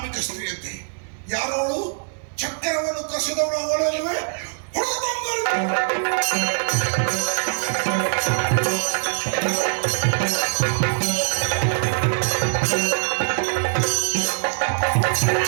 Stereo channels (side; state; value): left; silent; 59 dB below the other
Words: ಸ್ತ್ರೀಯಂತೆ, ಯಾರೋಳು ಚಕ್ರವನ್ನು ಕಸಿದವಳು ಅವಳಲ್ಲವೇ